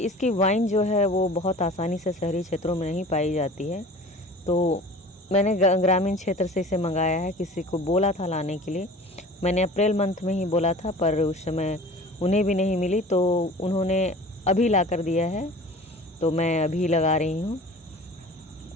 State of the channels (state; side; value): normal; both; correlation 0.42